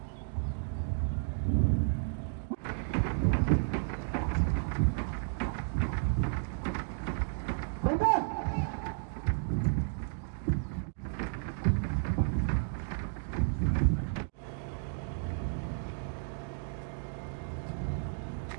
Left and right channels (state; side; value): silent; left; digital silence